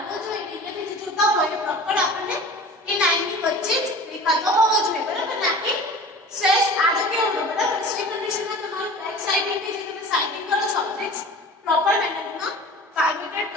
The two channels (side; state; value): both; normal; correlation 0.39